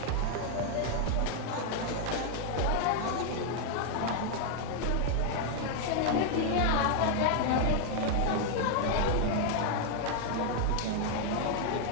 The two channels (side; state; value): both; different; correlation 0.00